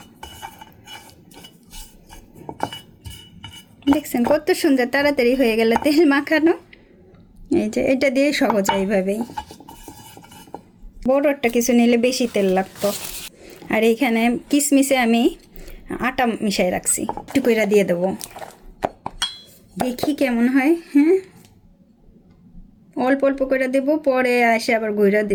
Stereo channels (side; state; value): both; identical; correlation 1.00